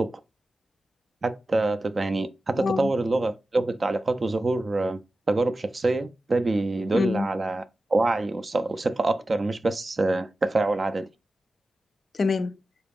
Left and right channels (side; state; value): both; normal; correlation 0.94